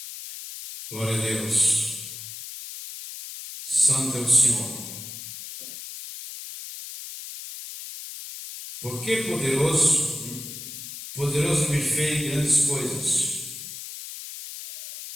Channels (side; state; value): left; noise; hiss, 10 dB below the sound